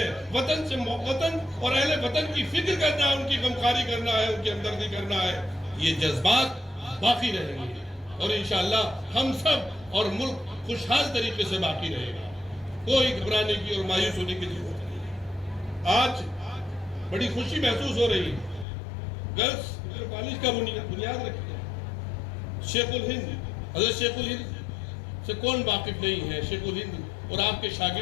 وطن سے وطن اور اہل وطن کی فکر کرنا ہے، ان کی غمخواری کرنا ہے، ان کی ہمدردی کرنا ہے، یہ جذبات باقی رہیں گے، اور انشاءاللہ ہم سب اور ملک خوشحال طریقے سے باقی رہے گا۔ کوئی گھبرانے کی اور مایوس ہونے کی ضرورت نہیں۔ آج بڑی خوشی محسوس ہو رہی ہے، گرلز کالج کا بنیاد رکھی ہے، شیخ الہند، حضرت شیخ الہند سے کون واقف نہیں ہے؟ شیخ الہند اور آپ کے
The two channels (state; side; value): drops out; right; at 18.7 s